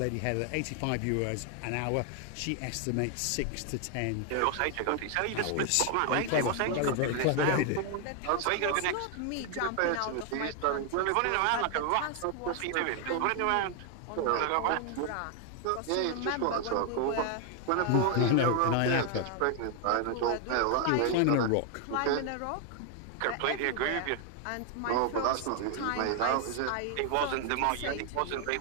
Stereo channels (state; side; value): different; both; correlation 0.00